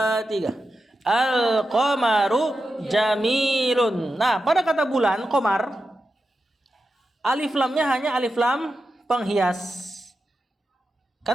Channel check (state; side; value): normal; both; correlation 0.90